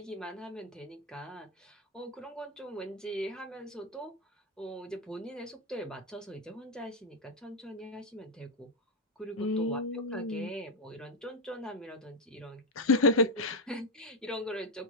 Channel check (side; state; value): both; normal; correlation 0.07